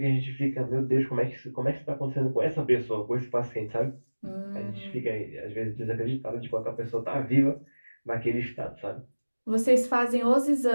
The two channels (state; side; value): inverted; both; correlation -1.00